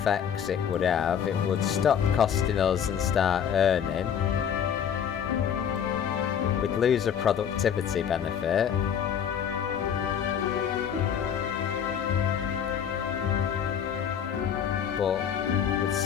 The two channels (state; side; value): quieter; right; 8.4 dB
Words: it would have, it would stop costing us and start earning. We'd lose a productivity benefit. But we'd